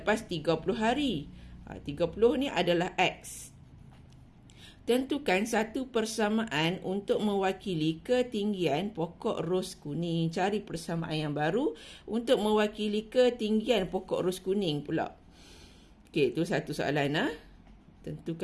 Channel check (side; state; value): both; identical; correlation 1.00